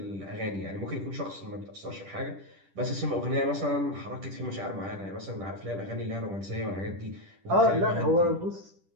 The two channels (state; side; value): late; left; 10 ms